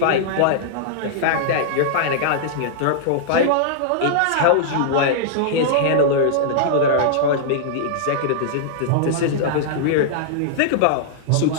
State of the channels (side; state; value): both; different; correlation -0.02